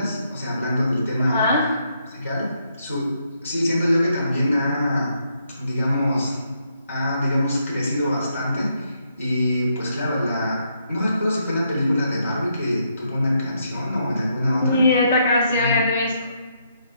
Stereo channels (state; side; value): inverted; both; correlation -0.77